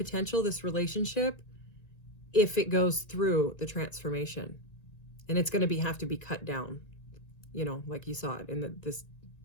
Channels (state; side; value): late; right; 1.9 ms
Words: this relationship, if it goes through the transformation. And it's going to have to be cut down, you know, like you saw it in this